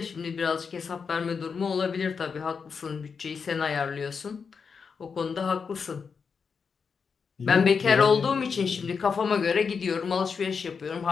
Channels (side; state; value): right; quieter; 5.7 dB